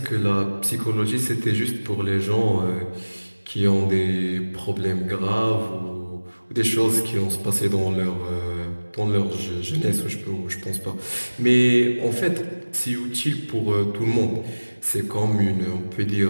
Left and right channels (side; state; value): both; inverted; correlation -1.00